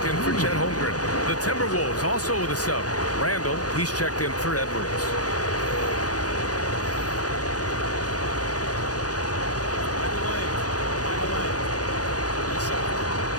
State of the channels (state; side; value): late; right; 0.68 ms